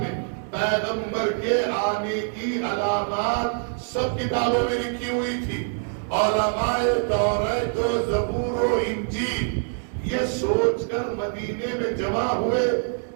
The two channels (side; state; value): left; silent; 62 dB below the other